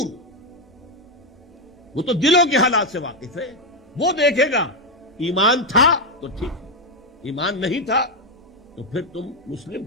وہ تو دلوں کے حالات سے واقف ہے. وہ دیکھے گا ایمان تھا تو ٹھیک ہے, ایمان نہیں تھا تو پھر تم مسلم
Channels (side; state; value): both; normal; correlation 0.05